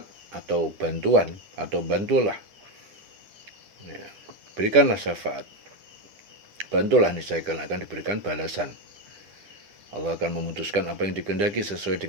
atau bantuan, atau bantulah. Ya. Berikanlah syafaat. Bantulah, niscaya akan diberikan balasan. Allah akan memutuskan apa yang dikehendaki sesuai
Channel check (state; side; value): late; left; 10 ms